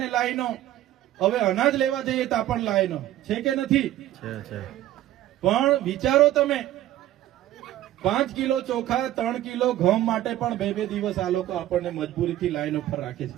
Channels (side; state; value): left; quieter; 13.7 dB